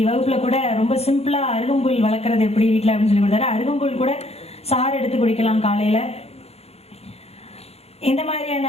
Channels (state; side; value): late; right; 0.30 ms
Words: வகுப்பில் கூட ரொம்ப சிம்பிளாக அருகம்புல் வளர்க்குறது எப்படி வீட்டில் அப்படின்னு சொல்லி கொடுத்தாரு. அருகம்புல் கூட சாறு எடுத்து குடிக்கலாம் காலையில். இந்த மாதிரியான